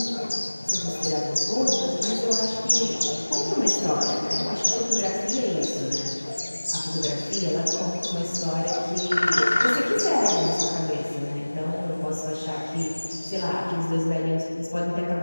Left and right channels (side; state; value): both; inverted; correlation -1.00